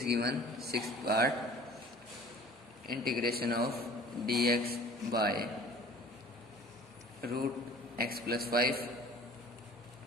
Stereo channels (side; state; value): both; normal; correlation 0.48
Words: given sixth part, integration of dx by root x plus 5